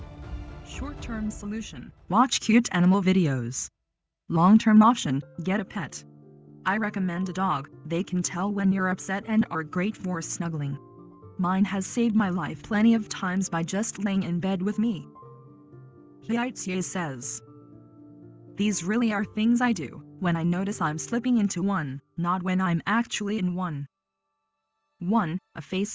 short-term solution, watch cute animal videos. Long-term option, get a pet. I recommend a dog, they can tell when you're upset and are great for snuggling. Mine has saved my life plenty of times by just laying in bed with me. Hiaitsie says, these really are things I do when I notice I'm slipping into one, not when I'm actually in one. 1. A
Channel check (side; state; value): both; identical; correlation 1.00